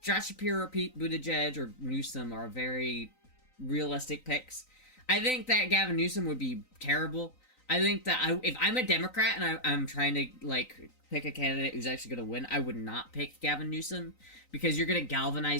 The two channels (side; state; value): right; late; 3.9 ms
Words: Josh Shapiro, Pete Buttigieg, or Newsom are very realistic picks. I think that Gavin Newsom would be terrible. I think that if I'm a Democrat and I'm trying to, like, pick a candidate who's actually going to win, I would not pick Gavin Newsom, because you're going to